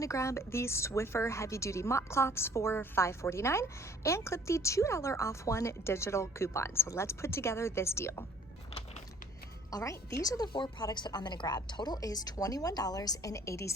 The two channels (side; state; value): both; normal; correlation 0.56